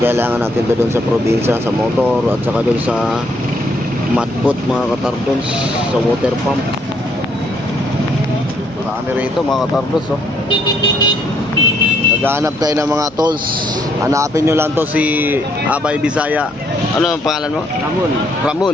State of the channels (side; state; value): right; noise; hum, 28 dB below the sound